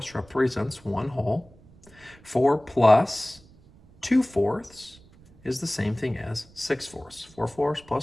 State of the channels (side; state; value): right; noise; rumble, 26 dB below the sound